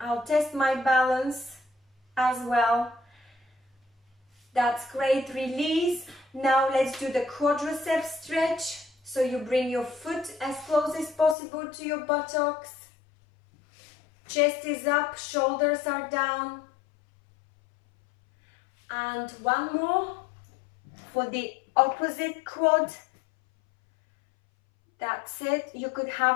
test my balance as well. That's great. Release. Now let's do the quadriceps stretch. So you bring your foot as close as possible to your buttocks. Chest is up, shoulders are down. And one more for the opposite quad. That's it. You could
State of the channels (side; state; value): right; drops out; at 11.4 s